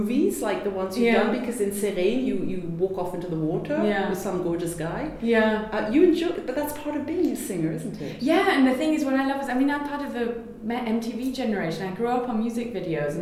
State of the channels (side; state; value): both; identical; correlation 1.00